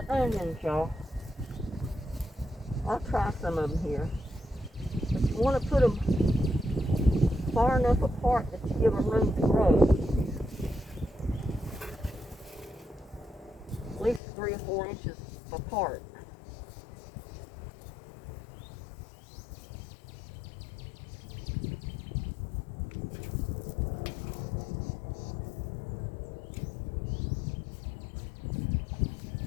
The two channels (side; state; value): right; drops out; at 14.2 s